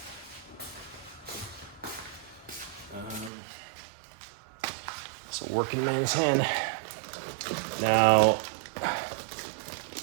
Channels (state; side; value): drops out; left; at 3.3 s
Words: It's a working man's hand. Now,